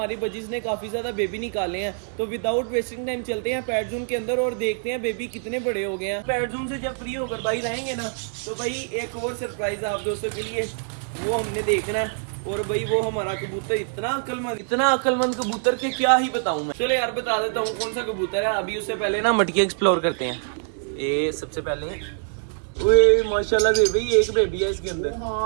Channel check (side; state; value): left; silent; 62 dB below the other